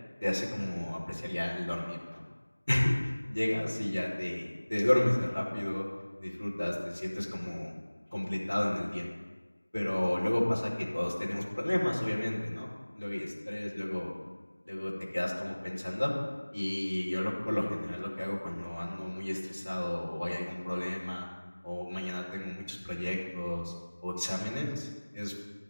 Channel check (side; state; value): both; inverted; correlation -1.00